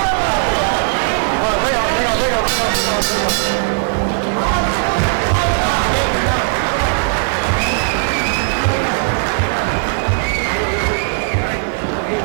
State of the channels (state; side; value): silent; left; digital silence